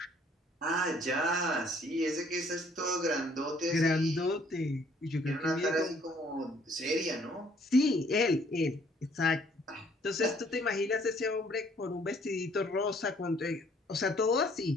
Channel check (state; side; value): normal; both; correlation 0.62